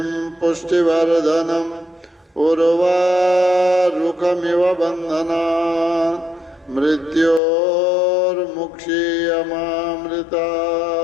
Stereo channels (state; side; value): drops out; right; at 7.4 s